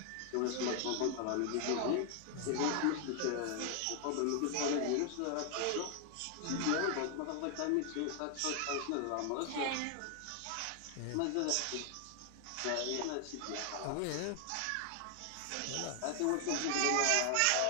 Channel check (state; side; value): different; both; correlation 0.00